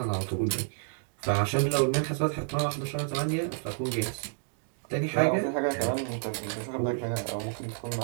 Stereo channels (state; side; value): silent; left; digital silence